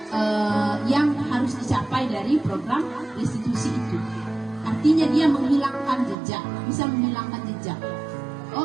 yang harus dicapai dari program restitusi itu. Artinya dia menghilangkan jejak, bisa menghilangkan jejak.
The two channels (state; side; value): drops out; left; at 6.2 s